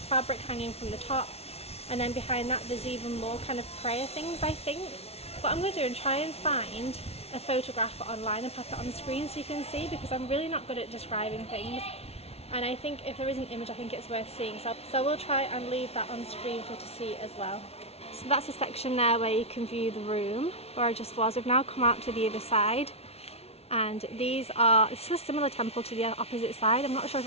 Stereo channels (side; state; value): right; late; 0.30 ms